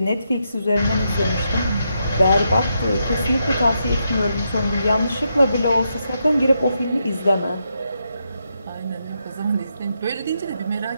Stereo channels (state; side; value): inverted; both; correlation -0.82